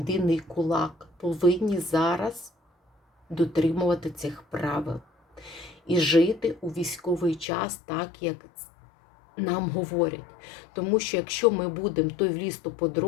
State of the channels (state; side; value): drops out; right; at 7.5 s